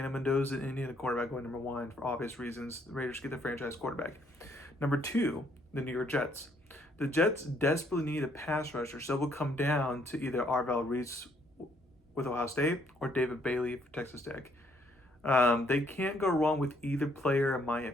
Mendoza, Indiana quarterback, going number one for obvious reasons. The Raiders get the franchise quarterback. Number two, the New York Jets. The Jets desperately need a pass rusher, so it will come down to either Arvell Reese with Ohio State or David Bailey for Texas Tech. They can't go wrong with either player, in my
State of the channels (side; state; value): both; normal; correlation 0.68